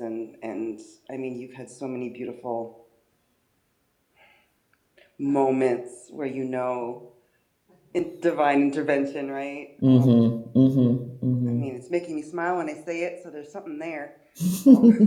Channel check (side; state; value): both; identical; correlation 1.00